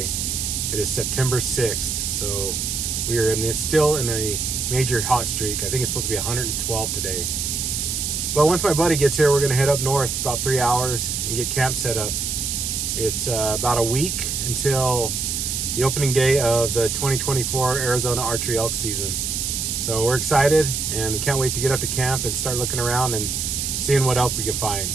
It is September 6th, so we are still in a major hot streak. I think it's supposed to be 112 today. But once my buddy gets here, we're going to head up north about 3 hours and get camp set up. It's about a week until the opening day of the 2024 Arizona Archery Elk season. So we're excited and we can't wait to get up to camp and start looking around and seeing what elk we can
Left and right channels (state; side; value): noise; right; hiss, 1 dB below the sound